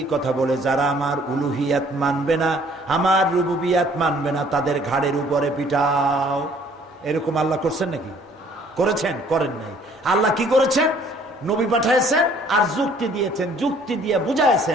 কথা বলে, যারা আমার উলুহিয়াত মানবে না, আমার রুবুবিয়াত মানবে না, তাদের ঘাড়ের উপরে পিটাও। এরকম আল্লাহ করছেন নাকি? করেছেন? করেন নাই। আল্লাহ কি করেছেন? নবী পাঠাইছেন আর যুক্তি দিয়েছেন, যুক্তি দিয়ে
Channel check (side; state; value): both; normal; correlation 0.58